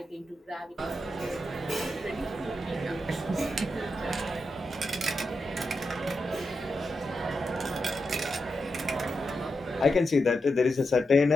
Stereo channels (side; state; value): both; normal; correlation 0.87